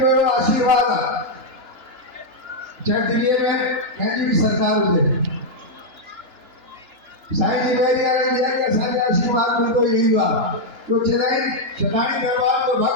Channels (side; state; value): left; late; 2.9 ms